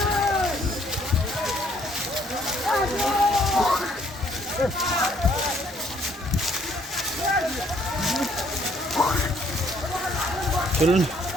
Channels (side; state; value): both; normal; correlation 0.65